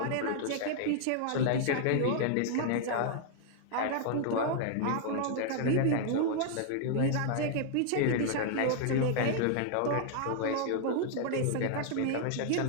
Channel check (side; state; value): both; different; correlation 0.00